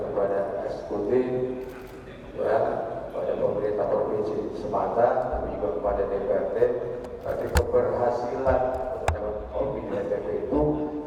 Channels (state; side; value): identical; both; correlation 1.00